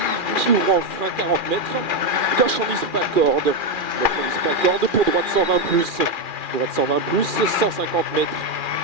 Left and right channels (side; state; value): left; late; 2.4 ms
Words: qui ouvre en frein 40 mètres, gauche 110 pas corde, gauche 110 pas corde, pour droite 120 plus, droite 120 plus, 150 mètres,